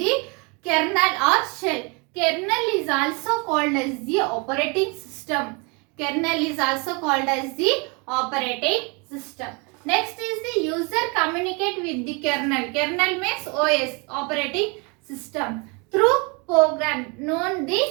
kernel or shell. Kernel is also called as the operating system. Kernel is also called as the operating system. Next is the user communicate with the kernel. Kernel means OS, operating system, through program known the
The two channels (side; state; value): left; quieter; 31.3 dB